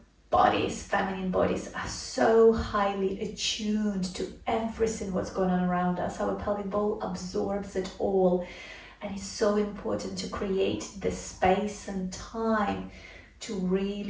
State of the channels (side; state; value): both; identical; correlation 1.00